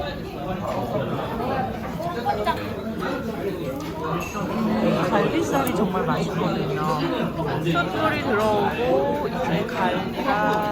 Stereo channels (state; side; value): identical; both; correlation 1.00